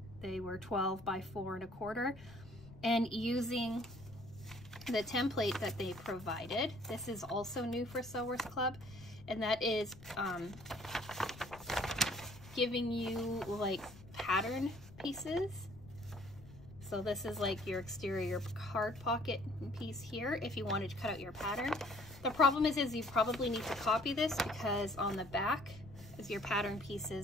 They were 12 by 4 1/4. And using the template that they provided, this is also new for Sewers Club, and that is giving you like pattern pieces. So this is like your exterior card pocket piece here if you wanted to cut out your pattern. The problem is you probably need to copy this, because on the back as your pattern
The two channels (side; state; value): left; noise; rumble, 18 dB below the sound